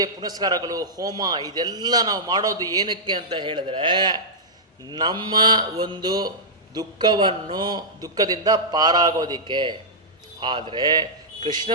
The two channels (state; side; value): normal; both; correlation -0.11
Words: ಪುನಸ್ಕಾರಗಳು, ಹೋಮ, ಇದೆಲ್ಲ ನಾವು ಮಾಡೋದು ಏನಕ್ಕೆ ಅಂತ ಹೇಳಿದ್ರೆ, ನಮ್ಮ ಒಂದು ದುಃಖದಿಂದ ಪಾರಾಗೋದಿಕ್ಕೆ. ಆದರೆ ಕೃಷ್ಣ